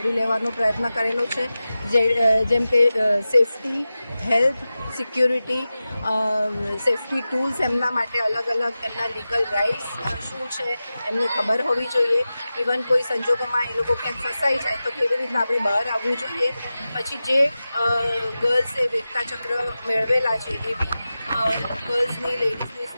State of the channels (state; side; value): inverted; both; correlation -0.95